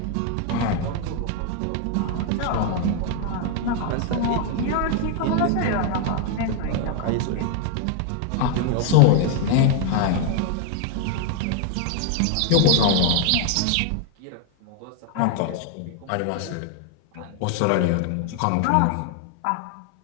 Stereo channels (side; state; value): both; different; correlation 0.00